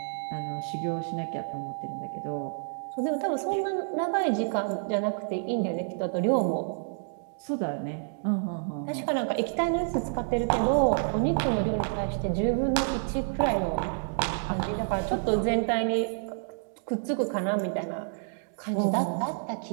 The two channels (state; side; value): silent; left; digital silence